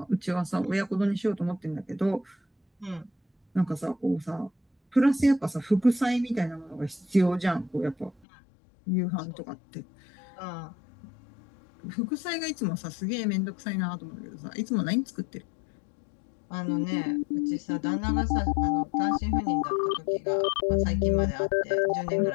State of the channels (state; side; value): drops out; right; at 8.1 s